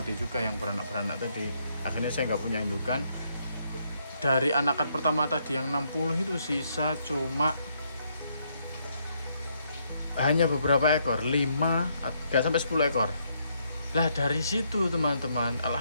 juga, yang beranak tadi. Akhirnya saya nggak punya indukan. Dari anakan pertama tadi yang 60 itu sisa cuma hanya beberapa ekor, 5 nggak sampai 10 ekor. Lah dari situ teman-teman,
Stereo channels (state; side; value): inverted; both; correlation -0.74